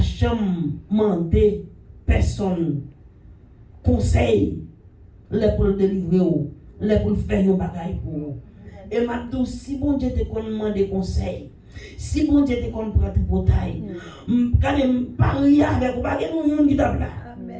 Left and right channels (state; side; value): identical; both; correlation 1.00